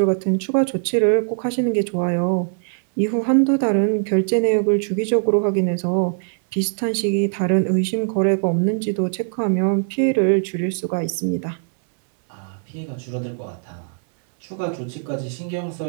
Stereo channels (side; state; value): left; silent; 65 dB below the other